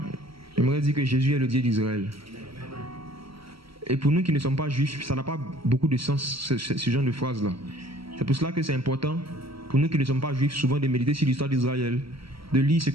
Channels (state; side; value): late; left; 0.75 ms